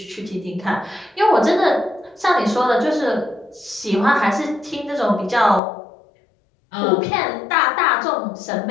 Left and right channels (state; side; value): drops out; right; at 5.6 s